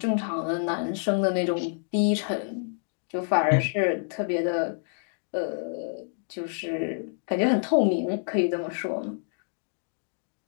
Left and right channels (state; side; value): silent; right; digital silence